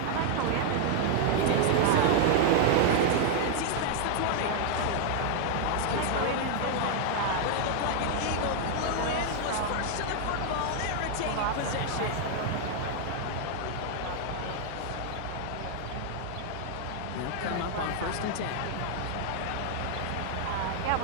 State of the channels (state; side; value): different; both; correlation 0.00